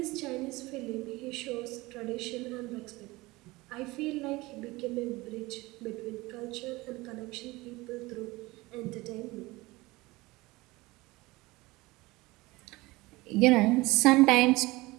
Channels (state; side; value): quieter; left; 21.3 dB